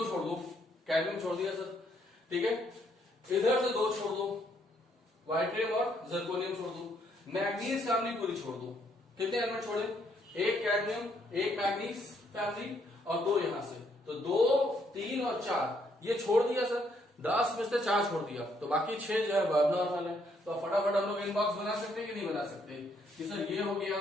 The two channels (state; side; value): normal; both; correlation 0.71